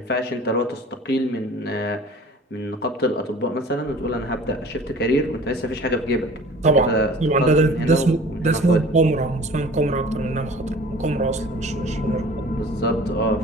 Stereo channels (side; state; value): both; normal; correlation 0.45